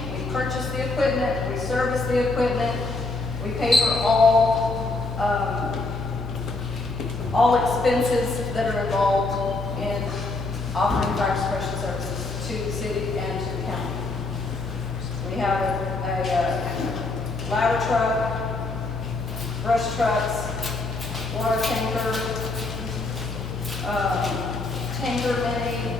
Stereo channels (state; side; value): quieter; right; 3.3 dB